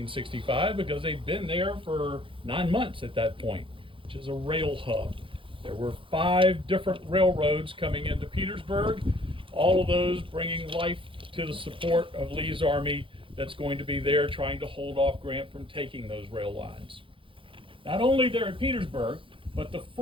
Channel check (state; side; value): late; left; 0.25 ms